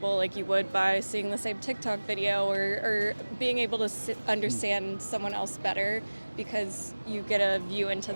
like you would by seeing the same TikTok video, or being able to understand someone else better because you get a view into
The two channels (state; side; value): inverted; both; correlation -1.00